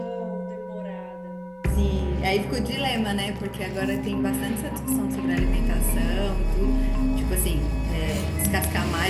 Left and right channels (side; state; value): both; identical; correlation 1.00